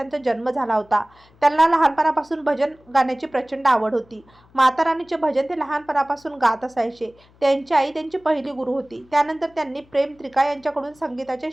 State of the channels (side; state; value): left; noise; hum, 29 dB below the sound